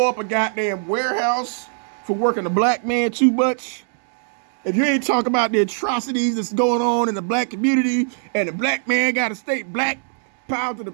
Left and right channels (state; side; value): silent; left; digital silence